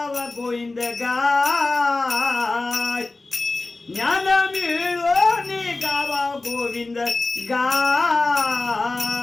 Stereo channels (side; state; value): right; quieter; 3.3 dB